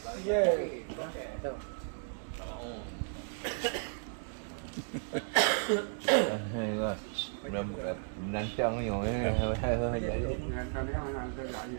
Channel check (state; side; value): silent; left; digital silence